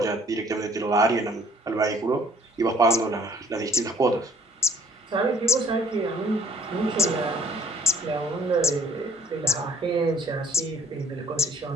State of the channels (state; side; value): normal; both; correlation 0.60